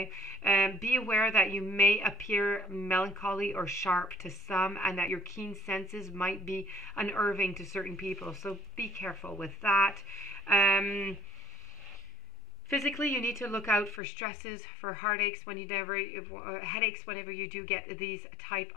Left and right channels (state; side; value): drops out; right; at 14.0 s